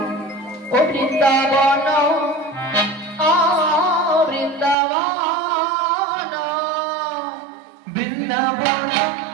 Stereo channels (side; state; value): left; drops out; at 4.8 s